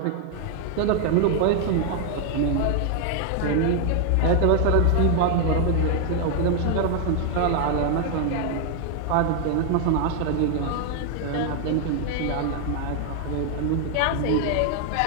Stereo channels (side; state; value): both; different; correlation 0.00